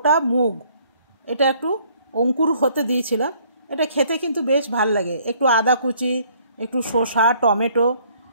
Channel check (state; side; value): inverted; both; correlation -0.62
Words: মুগ, এটা একটু অঙ্কুর হতে দিয়েছিলাম। এটা খেতে কিন্তু বেশ ভাল লাগে। একটু আদা কুচি, একটু শসা, টমেটো,